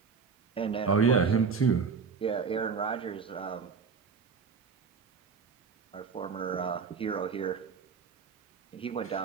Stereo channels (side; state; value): left; quieter; 5.6 dB